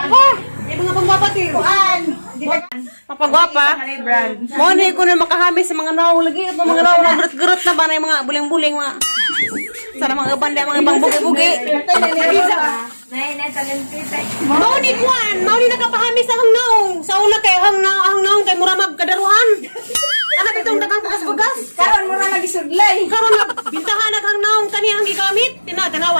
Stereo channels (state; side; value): inverted; both; correlation -1.00